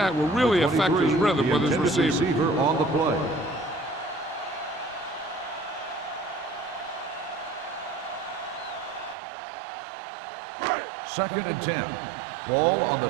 will really The affect his 23, rhythm the with his intended receiver. on the play. Second and 10. Ball on the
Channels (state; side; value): drops out; left; at 9.2 s